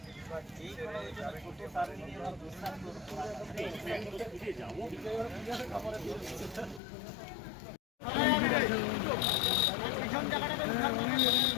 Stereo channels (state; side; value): drops out; right; at 6.8 s